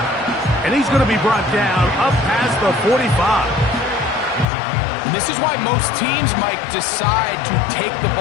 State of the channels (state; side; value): drops out; right; at 4.5 s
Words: And he's going to be brought down up past the 45. And this is why most teams, Mike, decide to take the